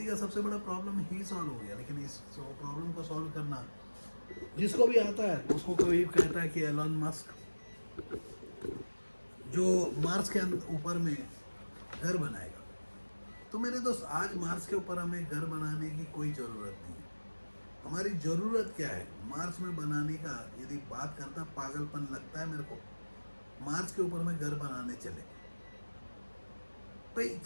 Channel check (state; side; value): inverted; both; correlation -1.00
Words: का सबसे बड़ा प्रॉब्लम ही सॉल्व हो गया। लेकिन इस प्रॉब्लम को सॉल्व करना जिसको भी आता है, उसको कोई कहता है कि एलन मस्क जो मार्स के ऊपर में घर बनाएगा। तो मेरे दोस्त, आज मार्स के ऊपर हमें घर बनाने की कोई ज़रूरत नहीं है। हमारी ज़रूरत क्या है? मार्स में बनाने का यदि बात करता, पागलपन लगता है मेरे को। मार्स के ऊपर में घर बनाने चले भाई,